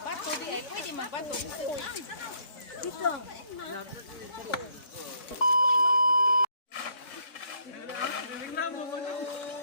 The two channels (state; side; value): late; right; 4.6 ms